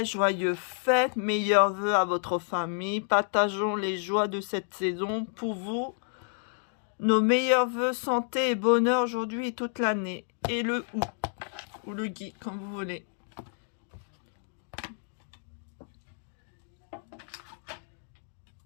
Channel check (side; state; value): right; silent; 58 dB below the other